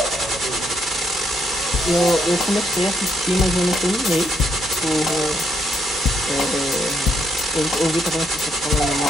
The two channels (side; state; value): both; normal; correlation 0.75